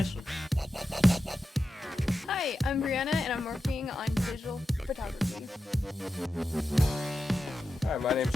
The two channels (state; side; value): normal; both; correlation 0.91